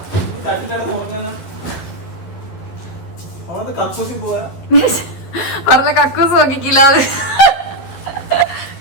പറഞ്ഞ കക്കൂസ് നോക്കിക്കില്ല അത്.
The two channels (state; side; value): late; right; 12 ms